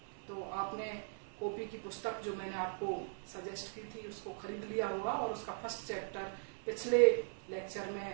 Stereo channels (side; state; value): left; silent; 51 dB below the other